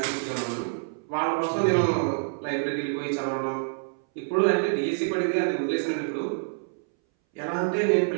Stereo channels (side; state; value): left; silent; 60 dB below the other